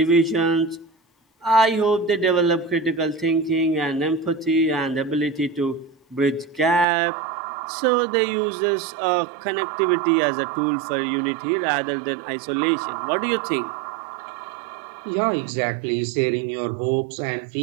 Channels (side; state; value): left; drops out; at 6.9 s